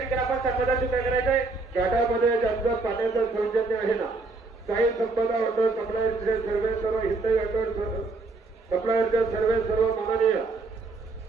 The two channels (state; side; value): quieter; left; 3.7 dB